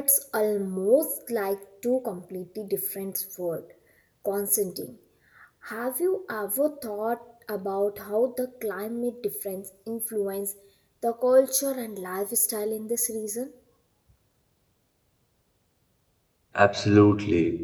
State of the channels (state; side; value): identical; both; correlation 1.00